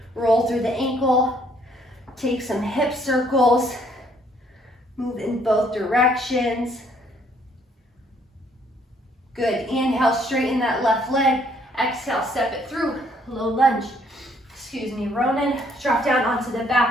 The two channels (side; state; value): both; normal; correlation 0.66